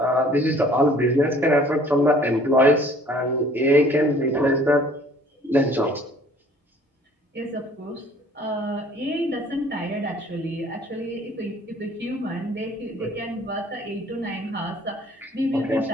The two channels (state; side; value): normal; both; correlation 0.54